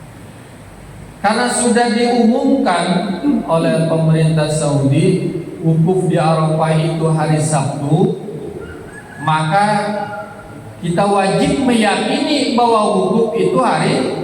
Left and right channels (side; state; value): both; identical; correlation 1.00